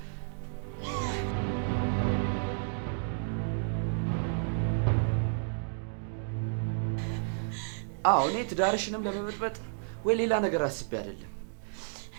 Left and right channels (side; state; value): left; silent; digital silence